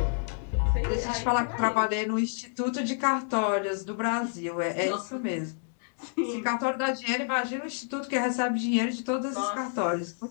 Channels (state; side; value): silent; right; digital silence